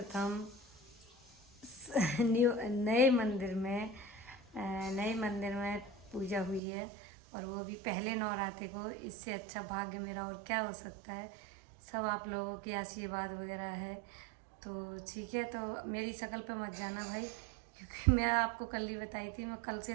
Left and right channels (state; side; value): drops out; left; at 6.6 s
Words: नए मंदिर में पूजा हुई है, और वो भी पहले नवरात्रि को। इससे अच्छा भाग्य मेरा और क्या हो सकता है। सब आप लोगों की आशीर्वाद वगैरह है, तो ठीक है। तो मेरी शक्ल पे मत जाना भाई, क्योंकि मैं आपको कल ही बताई थी, मैं कल